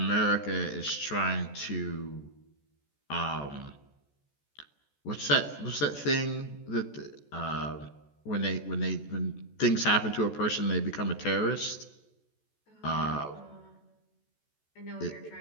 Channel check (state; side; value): late; right; 14 ms